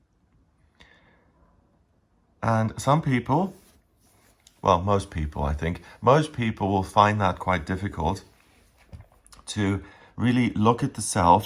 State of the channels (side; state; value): both; identical; correlation 1.00